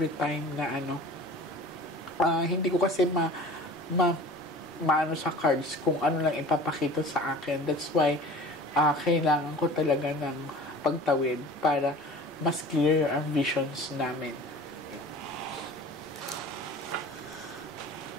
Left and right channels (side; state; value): both; normal; correlation 0.41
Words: time na hindi ko kasi maano sa cards kung ano lang ipapakita sa akin. That's why kailangan ko talaga ng pagtawid para mas clear ang visions namin.